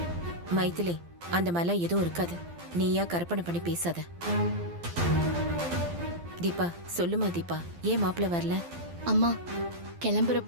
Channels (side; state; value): left; late; 12 ms